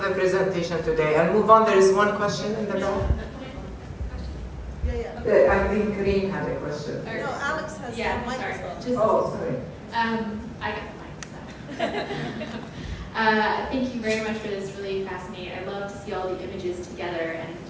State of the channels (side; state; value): both; identical; correlation 1.00